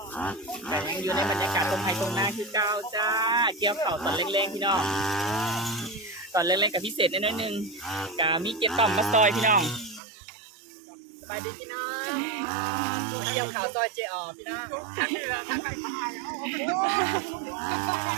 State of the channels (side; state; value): left; drops out; at 10.0 s